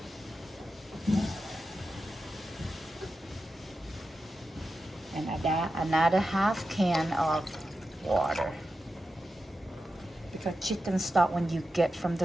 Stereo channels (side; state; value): both; normal; correlation 0.90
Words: And add another half can of water. Because chicken stock, when you get from